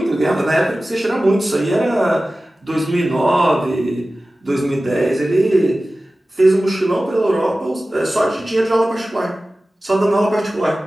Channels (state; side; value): normal; both; correlation 0.96